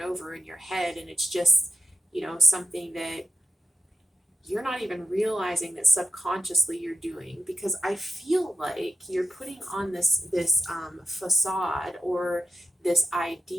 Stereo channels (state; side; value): normal; both; correlation 0.88